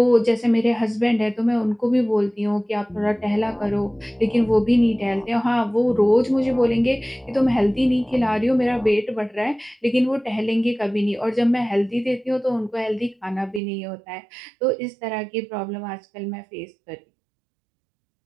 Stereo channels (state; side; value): drops out; left; at 13.6 s